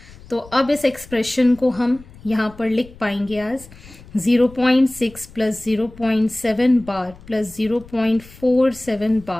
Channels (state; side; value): noise; left; rumble, 21 dB below the sound